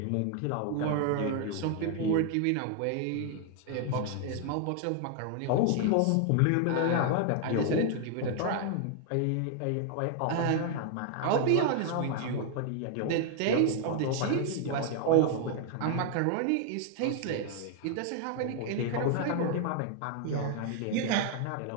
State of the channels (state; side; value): different; both; correlation 0.00